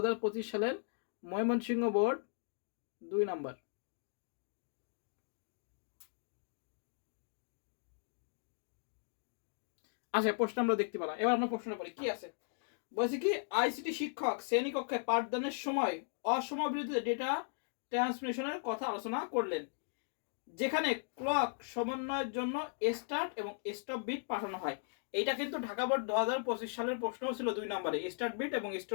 সালের ময়মনসিংহ বোর্ড 2 নম্বর। আচ্ছা, প্রশ্ন আমরা দেখতে পেলাম। এবার আমরা প্রশ্ন পড়ি কি আছে। বলছে কি, আইসিটি শিক্ষক শ্রেণীকক্ষে পাঠদানের সময় অসমাবৃত ডেটা ট্রান্সমিশনের কথা আলোচনা করলেন, যেখানে ক্লক সমন্বয়ের জন্য স্টার্ট এবং স্টপ বিট পাঠানো হয়। এইটা কিন্তু ঢাকা বোর্ড 2025 সালের প্রশ্ন ছিল 2 নম্বরে। স্টার্ট বিট এবং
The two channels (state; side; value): silent; right; digital silence